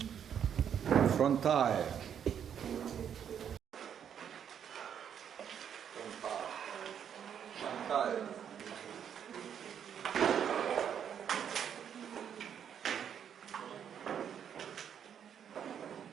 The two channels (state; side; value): quieter; left; 8.5 dB